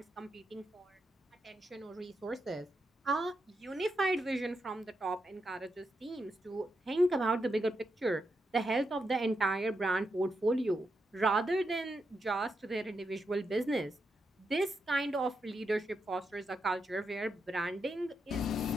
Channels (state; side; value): normal; both; correlation 0.84